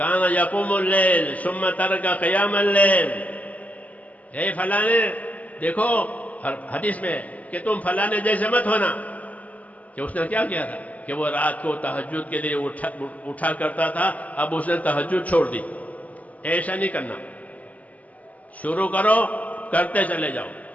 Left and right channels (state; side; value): late; right; 0.074 ms